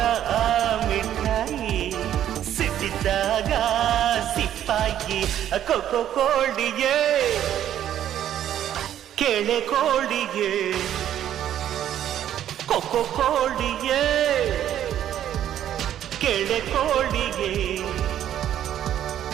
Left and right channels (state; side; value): quieter; left; 11.0 dB